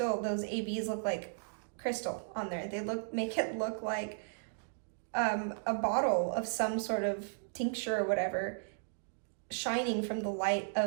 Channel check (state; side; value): silent; left; digital silence